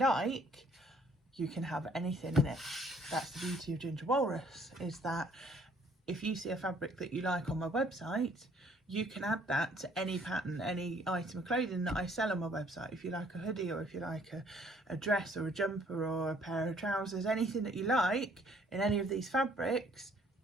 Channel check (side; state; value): both; normal; correlation 0.61